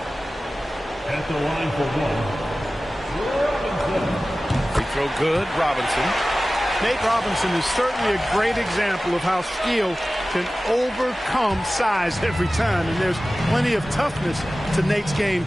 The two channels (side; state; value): both; normal; correlation 0.96